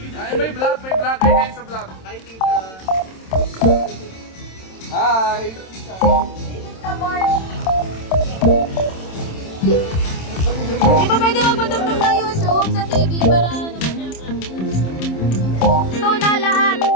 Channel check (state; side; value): late; right; 27 ms